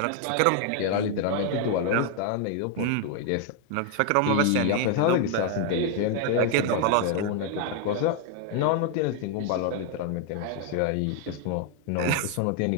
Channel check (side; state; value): both; different; correlation 0.00